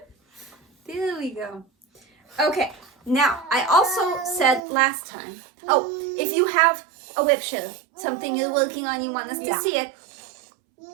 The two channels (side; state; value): left; drops out; at 4.6 s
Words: There we go. Okay, now I also said last time. Oh, if you have a WIP SHARE, something you're working on, you want us to see it.